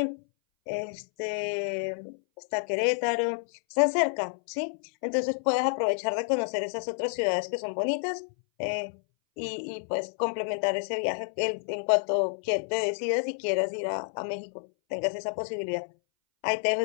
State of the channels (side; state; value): right; silent; 58 dB below the other